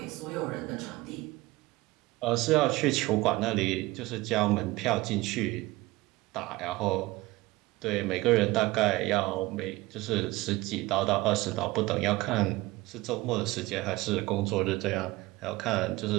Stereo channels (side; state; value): left; quieter; 20.0 dB